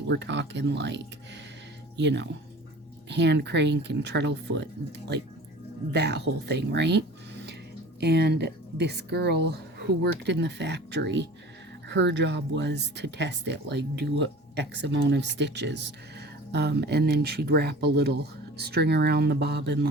We're talking like, you know, hand crank and treadle foot, like that whole thing, right? And this girl who worked in the factory, her job was to test it, like do X amount of stitches, and then she'd wrap a little string around the bobbin,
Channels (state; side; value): normal; both; correlation 0.41